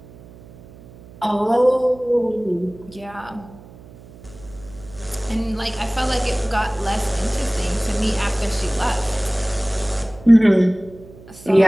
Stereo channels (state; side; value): noise; right; hum, 21 dB below the sound